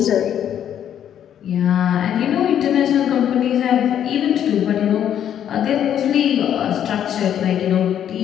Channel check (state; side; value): quieter; right; 9.8 dB